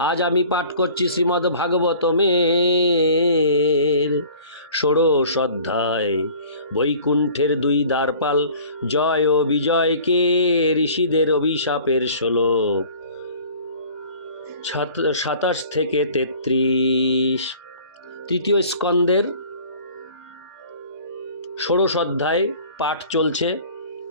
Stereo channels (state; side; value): inverted; both; correlation -0.48